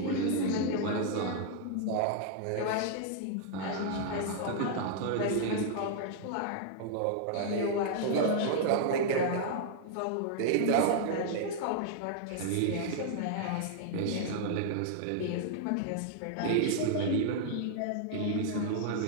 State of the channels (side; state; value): both; different; correlation -0.01